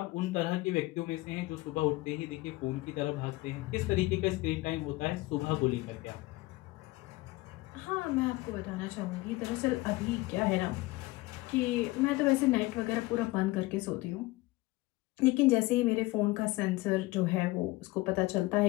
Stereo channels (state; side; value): quieter; right; 20.6 dB